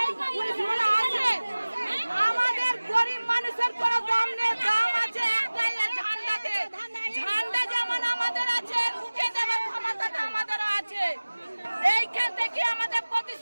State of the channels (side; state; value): both; inverted; correlation -1.00